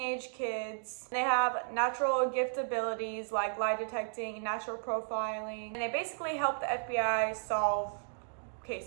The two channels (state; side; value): silent; left; digital silence